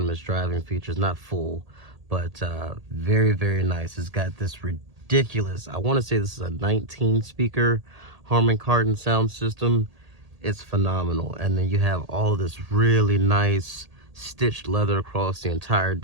driving features, not full, but very, very nice. It's got this ridiculous, I want to say this is a 19 speaker Harman Kardon sound system. It's phenomenal. And then you have all this really nice stitched leather across the entire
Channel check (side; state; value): left; late; 1.8 ms